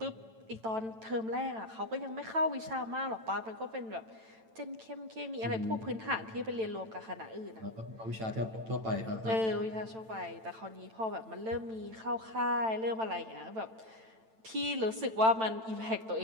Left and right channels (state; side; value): late; left; 9.0 ms